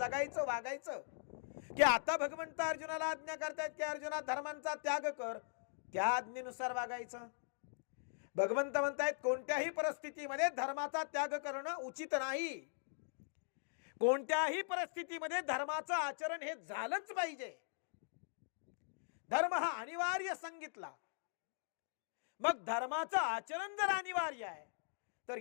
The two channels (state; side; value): silent; right; digital silence